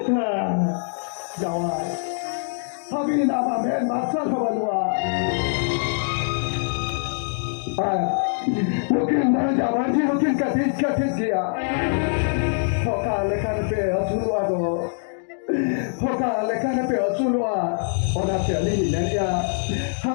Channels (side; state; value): right; silent; digital silence